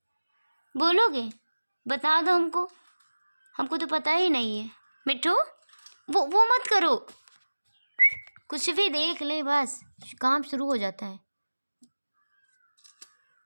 बोलोगे? बता दो हमको, हमको तो पता ही नहीं है। मिट्टू वो मत करो, कुछ भी देख ले बस काम शुरू हो जाता है।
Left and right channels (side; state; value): both; inverted; correlation -1.00